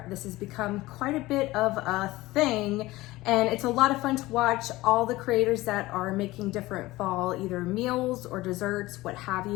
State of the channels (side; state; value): right; quieter; 18.8 dB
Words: This has become quite a bit of a thing, and it's a lot of fun to watch all the creators that are making different fall either meals or desserts, what have